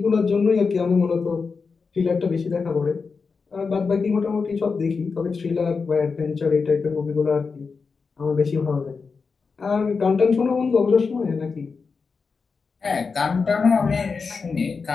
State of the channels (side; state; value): right; quieter; 4.9 dB